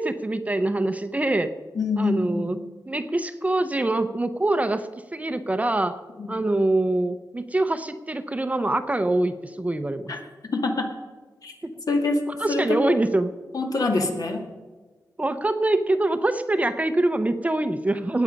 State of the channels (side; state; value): both; normal; correlation 0.89